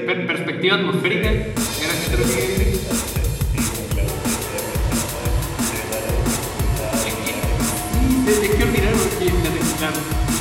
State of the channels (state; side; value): identical; both; correlation 1.00